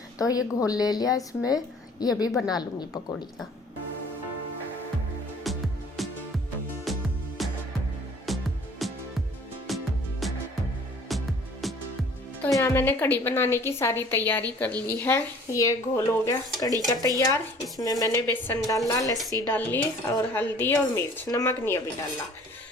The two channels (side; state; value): both; normal; correlation 0.51